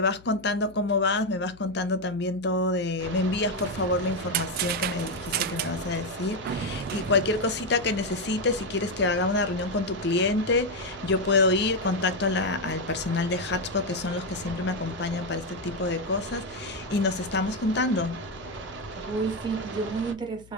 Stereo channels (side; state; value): left; noise; hum, 24 dB below the sound